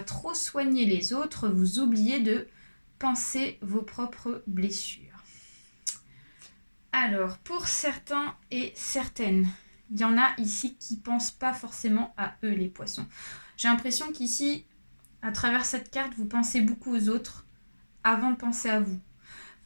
trop soigner les autres, vous oubliez de penser vos propres blessures. Alors, pour certains et certaines, il y en a ici qui ne pensent pas forcément à eux, les poissons. J'ai l'impression qu'ici, à travers cette carte, vous pensez beaucoup aux autres avant de penser à vous.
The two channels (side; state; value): both; inverted; correlation -1.00